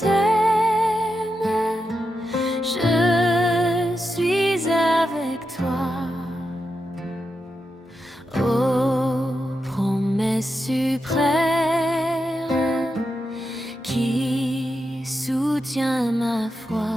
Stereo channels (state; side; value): normal; both; correlation 0.87